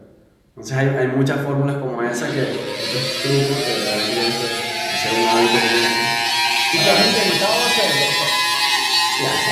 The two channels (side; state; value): both; identical; correlation 1.00